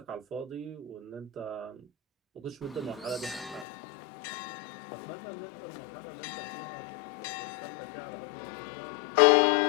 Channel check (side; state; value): right; drops out; at 3.7 s